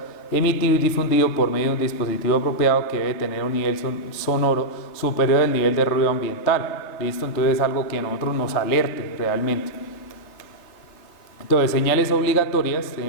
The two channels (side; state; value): right; late; 3.4 ms